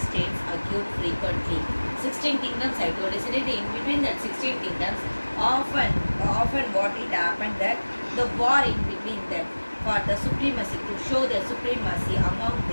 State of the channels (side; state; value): both; inverted; correlation -1.00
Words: occurred frequently. 16 kingdoms I told you, in between that 16 kingdoms, often what it happened that the war in between them for the supremacy, to show the supremacy among